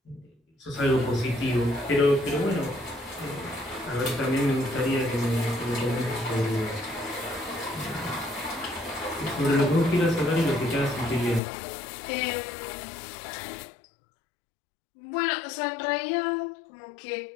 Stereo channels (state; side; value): drops out; right; at 11.4 s